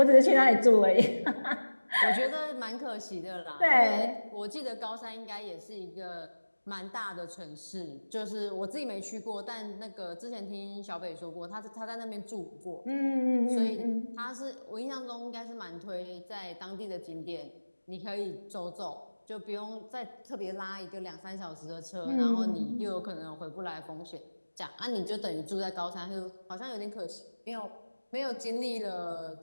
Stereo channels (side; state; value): both; inverted; correlation -1.00